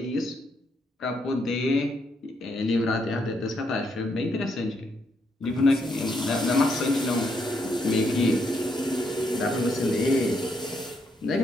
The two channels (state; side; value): normal; both; correlation 0.76